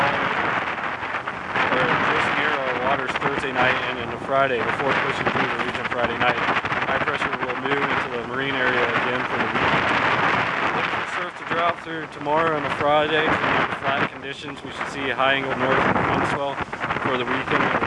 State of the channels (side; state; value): both; identical; correlation 1.00